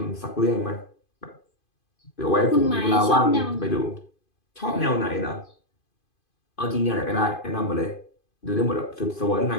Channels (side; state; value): right; late; 2.5 ms